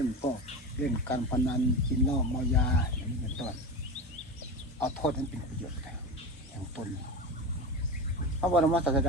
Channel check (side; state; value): both; normal; correlation 0.25